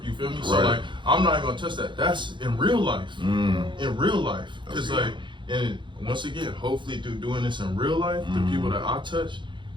You feel me? So like, I'm not gonna touch that. That's in real life. In real life, because like, and once again, hopefully through doing this in real life, the people that I touch,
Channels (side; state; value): left; late; 0.23 ms